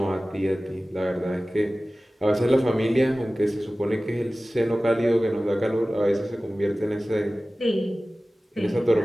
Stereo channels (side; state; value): both; normal; correlation 0.97